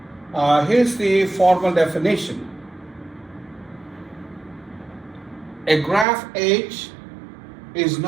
Here's the formal definition. A graph H is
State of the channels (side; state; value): left; drops out; at 6.1 s